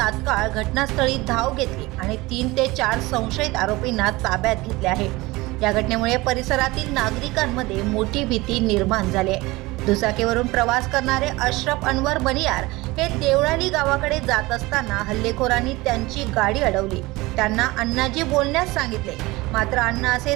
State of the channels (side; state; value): left; quieter; 21.2 dB